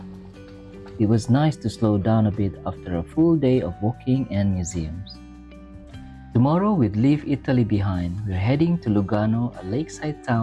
It was nice to slow down a bit after a full day of walking and museums. Tomorrow we'd leave Italy behind. We're heading to Lugano, a lakeside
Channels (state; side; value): identical; both; correlation 1.00